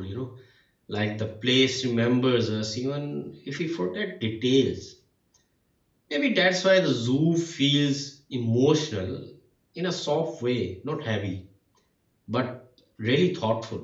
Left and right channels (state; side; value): identical; both; correlation 1.00